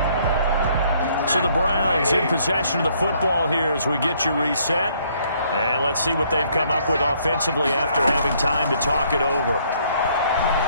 So the Browns in possession of the football here as we get you reset. And let's see what they've come up with offensively after having time to talk it over.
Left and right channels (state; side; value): inverted; both; correlation -0.66